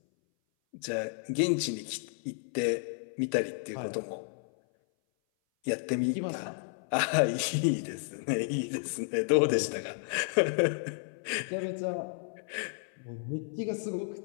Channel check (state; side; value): silent; right; 56 dB below the other